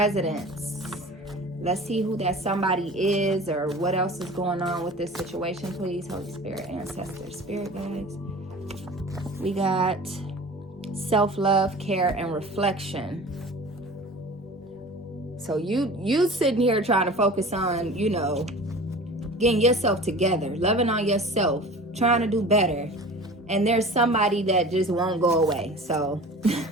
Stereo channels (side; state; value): both; normal; correlation 0.40